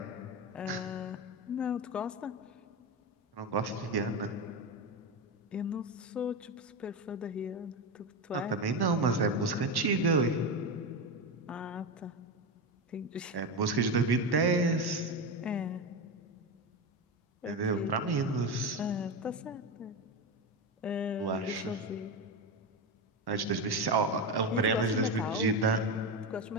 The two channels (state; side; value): normal; both; correlation 0.17